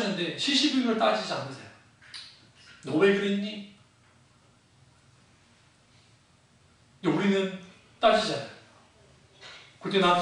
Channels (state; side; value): identical; both; correlation 1.00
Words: 시시비비를 따지지 않으세요. 너 왜 그랬니? 우리는 따지잖아요. 그때